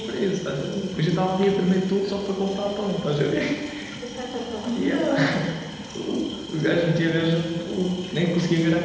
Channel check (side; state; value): both; identical; correlation 1.00